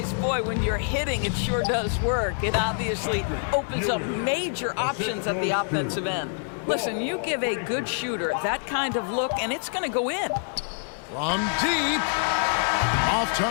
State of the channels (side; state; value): right; silent; 61 dB below the other